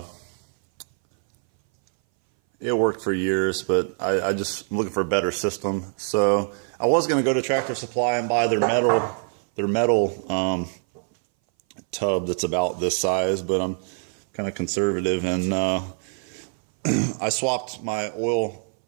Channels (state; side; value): silent; left; 59 dB below the other